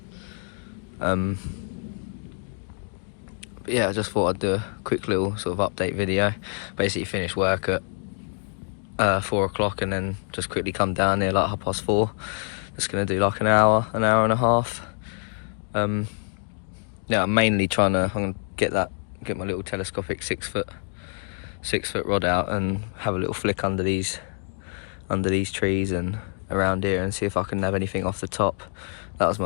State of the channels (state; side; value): silent; right; 55 dB below the other